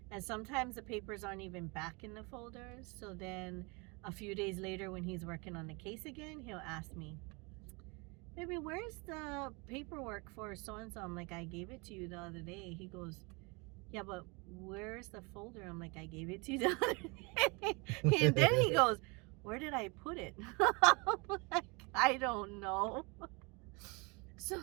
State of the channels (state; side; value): quieter; left; 28.9 dB